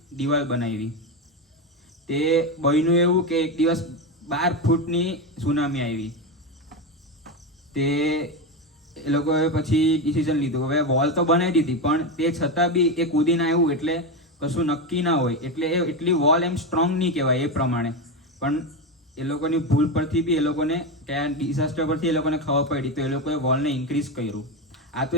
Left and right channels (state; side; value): normal; both; correlation 0.14